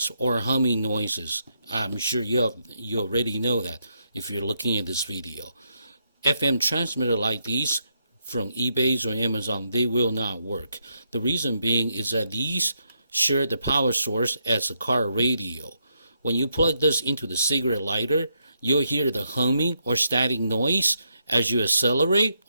or humming noises. I'm sure you already know that if you're looking at this video. FM transmitter like these from eBay or Amazon, they will not work. The reason being is that these share the power source as a car radio. When you plug this into the cigarette lighter, you'll hear the humming or static noise as you accelerate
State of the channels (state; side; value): inverted; both; correlation -0.79